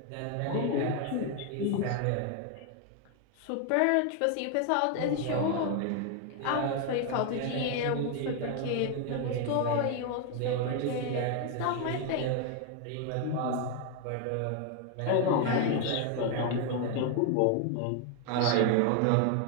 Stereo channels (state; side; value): different; both; correlation 0.01